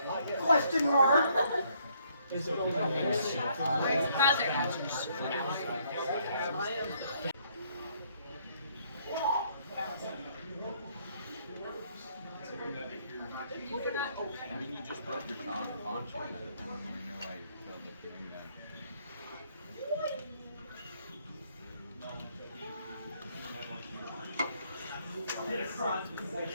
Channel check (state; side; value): inverted; both; correlation -0.68